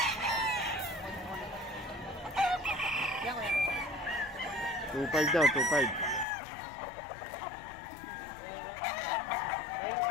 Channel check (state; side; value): drops out; right; at 6.2 s